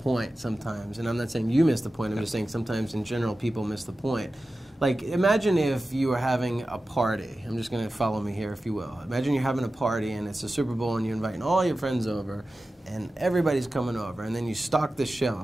sometimes. And I'm not saying you miss the point. I'm just saying sometimes in general people miss the point. Like, imagine if you were having a party. I'm just going to follow me here, if you will. Imagine you're having a party and it's a Super Bowl and you're inviting all your friends over and everybody's coming over, and then you stock the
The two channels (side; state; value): both; normal; correlation 0.94